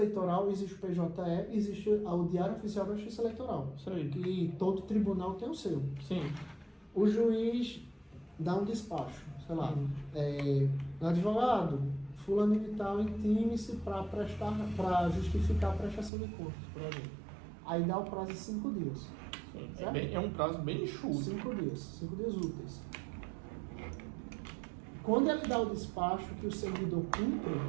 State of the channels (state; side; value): drops out; left; at 16.1 s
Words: existe o PJE, existe o diário oficial da justiça eleitoral. Que todo tribunal tem o seu. Sim. O juiz dá um despacho, sei lá, advogado, fulano de tal, intime-se para justificar a prestação de contas, por exemplo. Aí dá o prazo de 5 dias. É um prazo bem enxuto. 5 dias úteis. Quando ele dá o despacho que o servidor cumpre